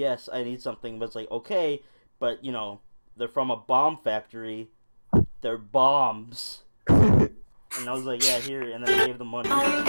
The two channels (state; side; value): inverted; both; correlation -1.00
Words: I need something." But it's like, okay, but you know, they're from a bomb factory. They're bombs. And I was like, "Yeah, here," and then I gave them money.